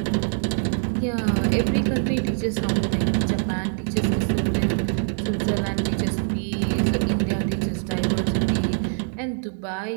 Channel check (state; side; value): silent; left; digital silence